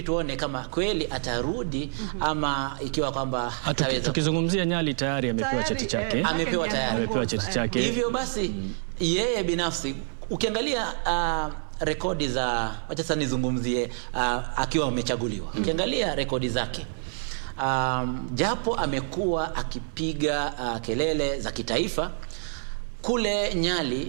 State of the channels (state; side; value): silent; left; digital silence